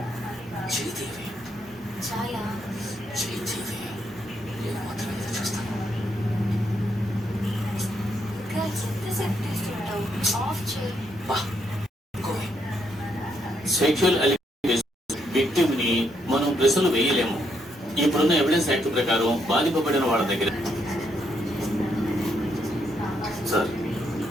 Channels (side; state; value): both; normal; correlation 0.76